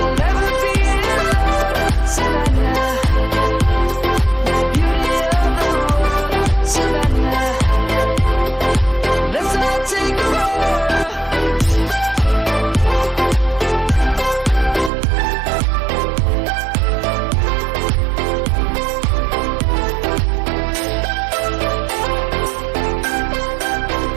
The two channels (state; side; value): drops out; left; at 14.9 s